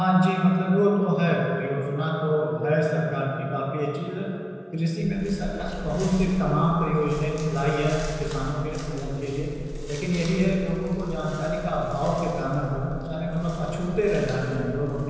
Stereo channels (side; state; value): both; identical; correlation 1.00